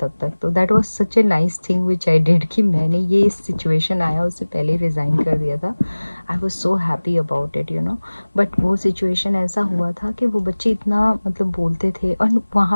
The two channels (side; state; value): both; inverted; correlation -1.00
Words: तक, तो that was such a nice thing which I did कि मैंने ये सिचुएशन आया उससे पहले रिज़ाइन कर दिया था, आई was so happy about it, but वो सिचुएशन ऐसा हुआ था कि वो बच्चे इतना मतलब बोलते थे, और